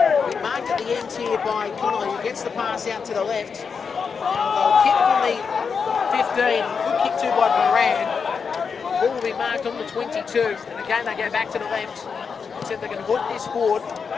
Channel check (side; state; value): right; quieter; 5.8 dB